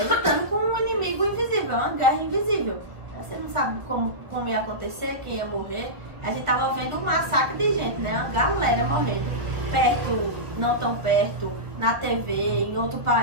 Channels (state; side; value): late; left; 1.6 ms